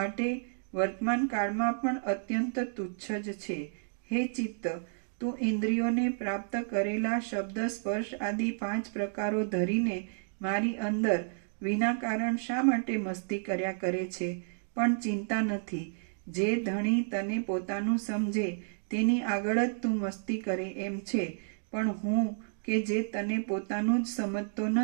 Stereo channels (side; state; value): left; silent; digital silence